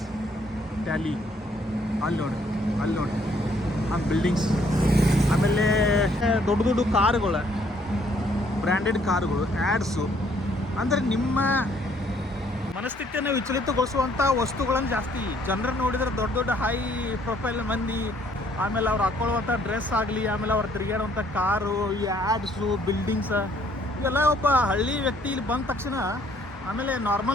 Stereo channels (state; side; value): normal; both; correlation 0.65